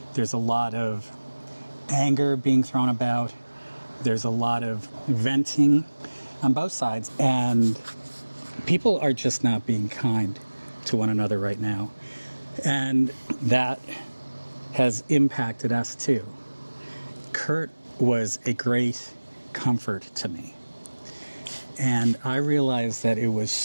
There's a lot of anger being thrown about. There's a lot of venting on both sides. And people are just not being kind to one another right now. And that has impacted us too. Kurt was a great comfort to me. And I realized that it was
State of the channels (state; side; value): inverted; both; correlation -1.00